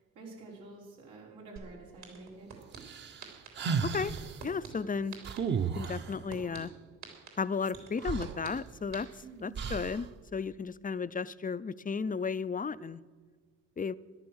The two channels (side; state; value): both; normal; correlation 0.39